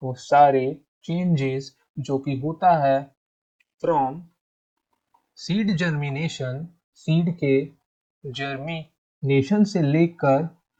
चेंजेस जो कि होता है फ्रॉम सीड जर्मिनेशन, सीड के जर्मिनेशन से लेकर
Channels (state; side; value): identical; both; correlation 1.00